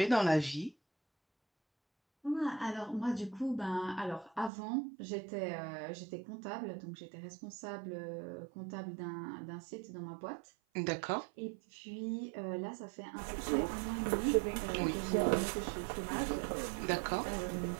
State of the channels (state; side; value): drops out; left; at 4.5 s